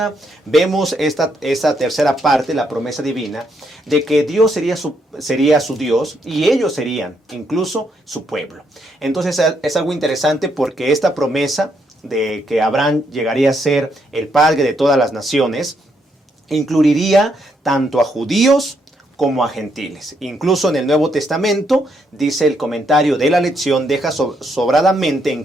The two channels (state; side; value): normal; both; correlation 0.75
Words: vemos esta tercera parte, la promesa divina, de que Dios sería su Dios, y ellos serían incluso su pueblo. Entonces es algo interesante, porque esta promesa de que Abraham llegaría a ser el padre de todas las naciones, incluiría tanto a judíos como a gentiles. Incluso en el Nuevo Testamento, dice el comentario de la lección, deja sobradamente en